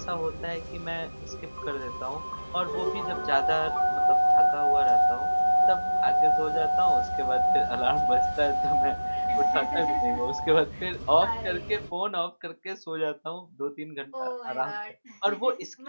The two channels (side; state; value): both; inverted; correlation -1.00